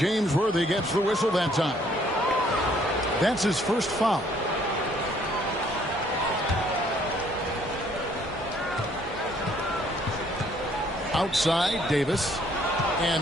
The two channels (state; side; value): normal; both; correlation 0.63